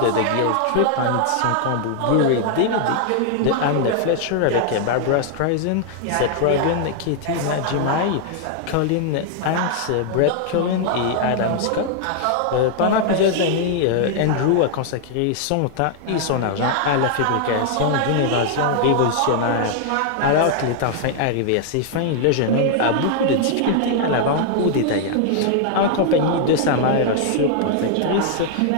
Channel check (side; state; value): both; different; correlation 0.00